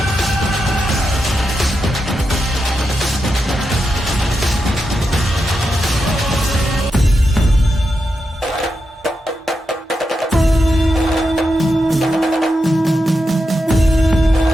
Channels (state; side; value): normal; both; correlation 0.87